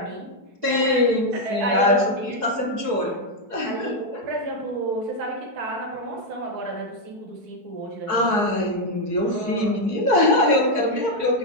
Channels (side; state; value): left; late; 4.7 ms